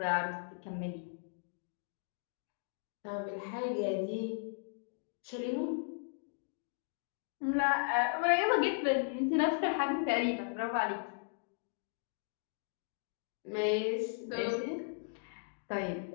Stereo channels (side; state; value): right; silent; digital silence